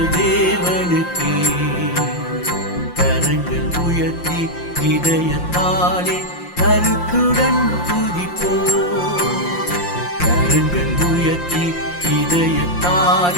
தேவனுக்கே. கரங்கள் உயர்த்தி இதயத்தாலே கருத்துடன் துதிப்போம். கரங்கள் உயர்த்தி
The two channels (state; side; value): late; right; 5.7 ms